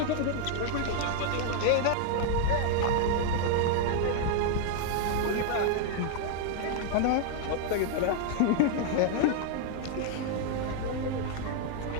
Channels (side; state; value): both; different; correlation 0.00